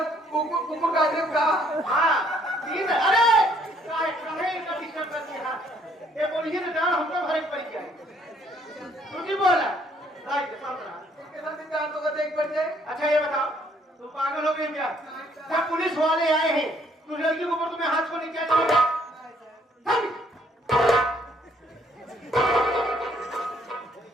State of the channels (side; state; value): both; normal; correlation 0.65